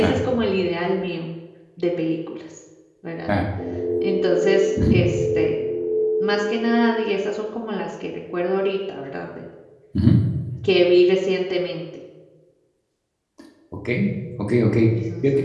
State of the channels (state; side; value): identical; both; correlation 1.00